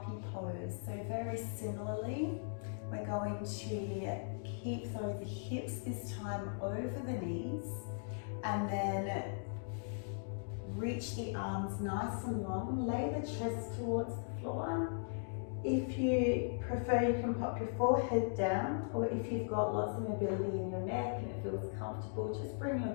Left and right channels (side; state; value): right; silent; digital silence